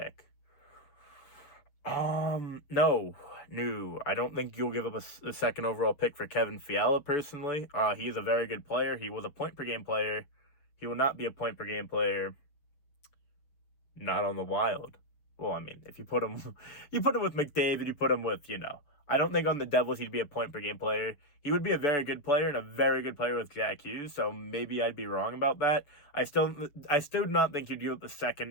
No, I don't think you'll give up the 2nd overall pick for Kevin Fiala, personally. He is a very good player. He was a point-per-game player. He will not be a point-per-game player not on the Wild. Well, I mean, if you put him with McDavid, you put him with, I don't think on the Devils he'd be a point-per-game player. He would be a very good player and a very good player with Jack Hughes, so maybe I'd be wrong about that. I still do not think you'd give up the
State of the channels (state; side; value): late; right; 7.1 ms